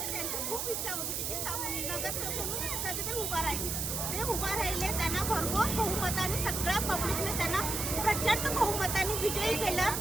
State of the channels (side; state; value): right; noise; hiss, 1 dB below the sound